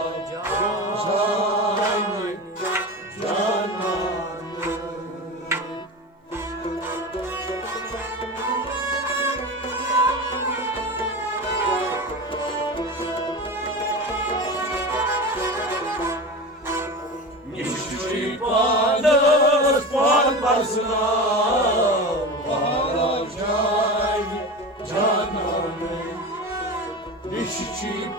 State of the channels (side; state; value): both; normal; correlation 0.27